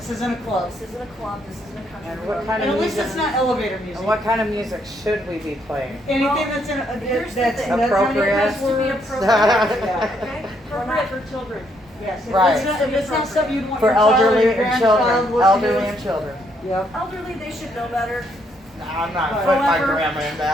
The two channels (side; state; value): both; normal; correlation 0.73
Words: isn't a club. This isn't a club. This isn't a country And club. what kind And of at least music? it's not elevator music. And what kind of music should we be playing? Anything that's in Here's the that's thing. Appropriate. It has to be appropriate. Okay? Appropriate for children. Yes. Right. If it's not something you'd want For your child or elderly your and grandchild children. listening Elderly to. and children. Yep. Elderly, they should know better. I'm not putting my grandma in